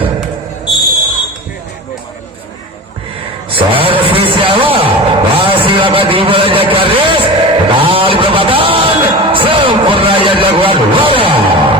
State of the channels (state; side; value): normal; both; correlation 0.31